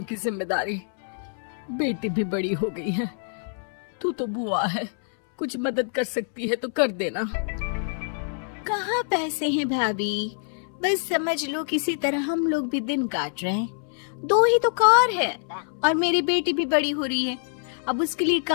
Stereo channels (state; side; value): silent; right; 61 dB below the other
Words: की जिम्मेदारी, बेटी भी बड़ी हो गई है। तू तो बुआ है, कुछ मदद कर सकती है तो कर देना। कहाँ पैसे हैं भाभी, बस समझ लो किसी तरह हम लोग भी दिन काट रहे हैं। 2 ही तो कार है और मेरी बेटी भी बड़ी हो रही है। अब उसके लिए